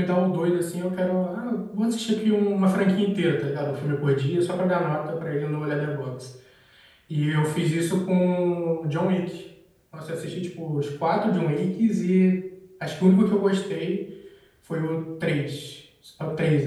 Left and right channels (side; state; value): both; identical; correlation 1.00